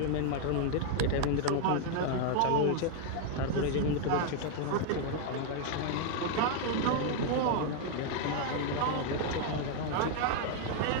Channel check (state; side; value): different; both; correlation 0.00